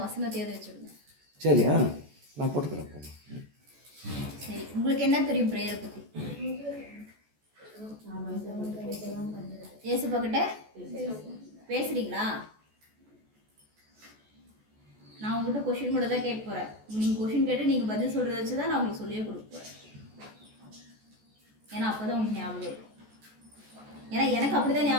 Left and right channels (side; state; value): left; late; 14 ms